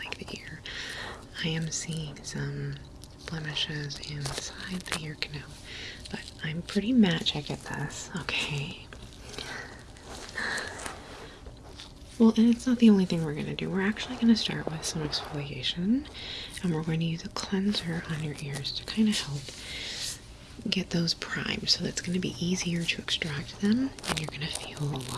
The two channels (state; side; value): identical; both; correlation 1.00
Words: the ear. I am seeing some blemishes inside the ear canal, but I'm pretty magic at this, okay? Well, and it's not the only thing we're going to do. We're actually going to start with some exfoliation, and we're going to use a cleanser on your ears to kind of help get those primed, so it's going to be easier to extract them, and you're going to feel a